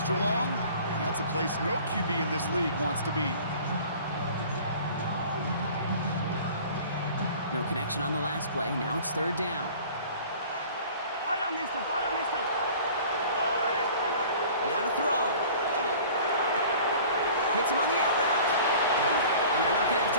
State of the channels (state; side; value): inverted; both; correlation -0.45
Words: long. And that's a place no QB in this league wants to be. No connection on the last play. Now it's 3rd down. Now to throw. Hits him on the out route. And they're not going to have